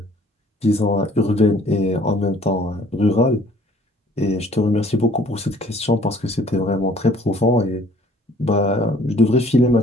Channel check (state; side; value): normal; both; correlation 0.56